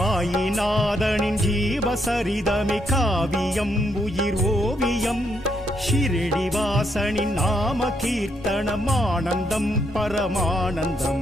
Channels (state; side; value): normal; both; correlation 0.76